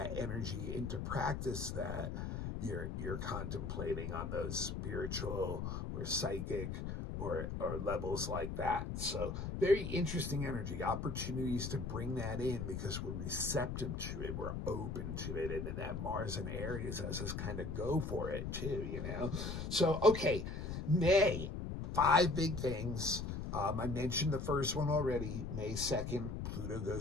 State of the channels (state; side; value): noise; left; rumble, 4 dB below the sound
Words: energy into practice that you're contemplating on those spiritual or psychic or levels like that. So very interesting energy, opportunities to bring that in because we're receptive to it, we're open to it, and then that Mars and Aries has us kind of go for it too, So, okay, May, 5 big things. I mentioned the first one already. May 2nd, Pluto